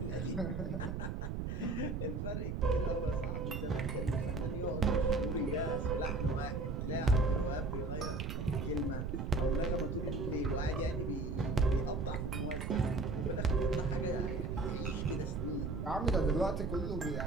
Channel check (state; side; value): noise; right; rumble, 3 dB below the sound